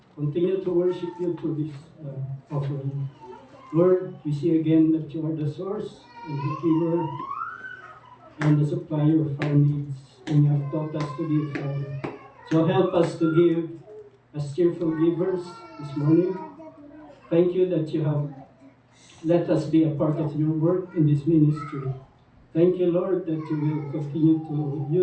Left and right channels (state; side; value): identical; both; correlation 1.00